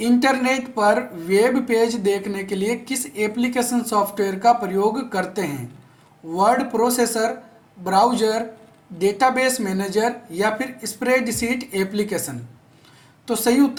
पर वेब पेज देखने के लिए किस एप्लीकेशन सॉफ्टवेयर का प्रयोग करते हैं? Word processor, browser, database manager या फिर स्प्रेडशीट एप्लीकेशन? तो सही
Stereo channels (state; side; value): identical; both; correlation 1.00